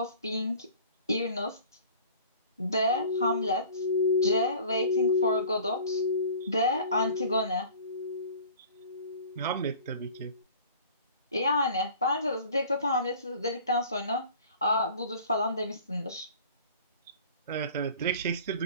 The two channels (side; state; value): both; inverted; correlation -0.45